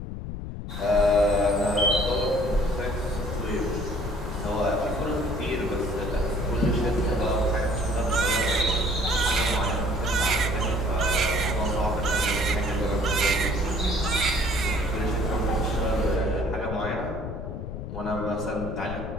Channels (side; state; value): left; noise; rumble, 7 dB below the sound